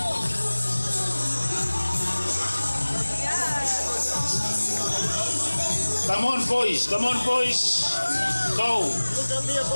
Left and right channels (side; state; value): both; inverted; correlation -1.00